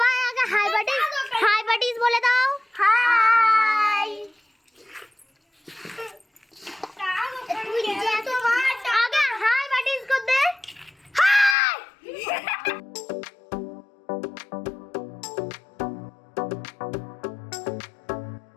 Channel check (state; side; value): drops out; right; at 11.6 s